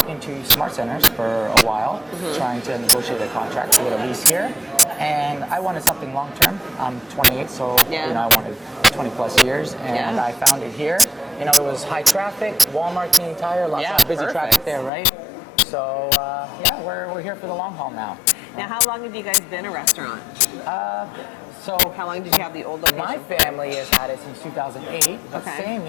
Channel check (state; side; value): drops out; right; at 14.9 s